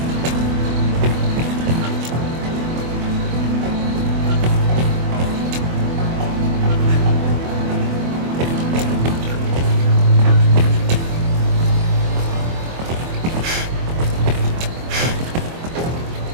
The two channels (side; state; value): left; late; 24 ms